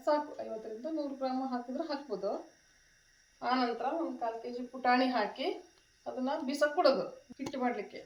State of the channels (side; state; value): both; identical; correlation 1.00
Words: ಸಾಕು. 50ರಿಂದ 100 ಗ್ರಾಮ್ ಹಾಕಿದ್ರೆ ಹಾಕ್ಬೋದು. ಆನಂತರ ಒಂದು 1/4 ಕೆ ಜಿ ಪುಟಾಣಿ ಹಾಕಿ ಅದನ್ನು ಬಿಸಕ್ಕೆ ಕೊಡೋದು. ಹಿಟ್ಟು ಮಾಡಲಿಕ್ಕೆ